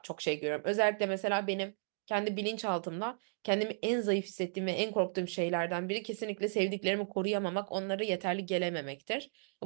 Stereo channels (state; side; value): silent; left; digital silence